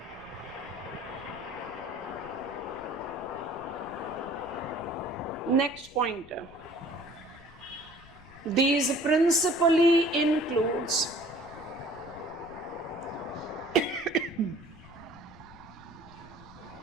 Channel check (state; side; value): noise; left; rumble, 20 dB below the sound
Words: Next pointer. These principally includes